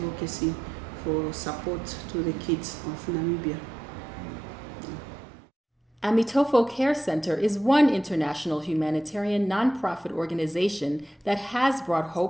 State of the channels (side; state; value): both; normal; correlation 0.86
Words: for support to the kids of Namibia. Amitofo Care Center is one international humanitarian nonprofit organization that has brought